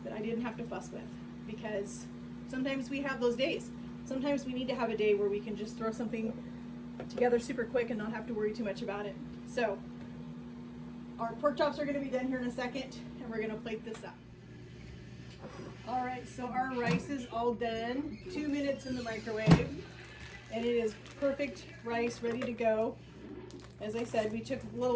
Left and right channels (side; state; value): both; identical; correlation 1.00